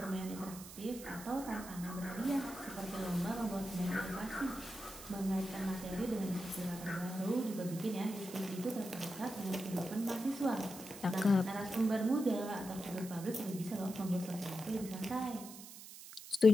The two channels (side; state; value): right; noise; hiss, 14 dB below the sound